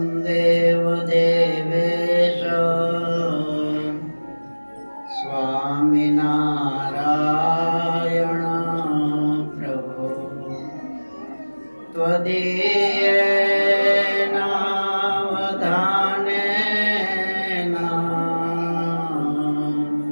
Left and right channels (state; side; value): inverted; both; correlation -1.00